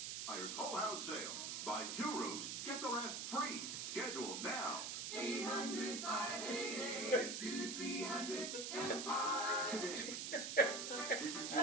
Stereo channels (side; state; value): right; noise; hiss, 3 dB below the sound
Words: Buyer's Whole House Sale. Buy 2 rooms, get the rest free. Schedule now. 800-588-2300 Empire. This is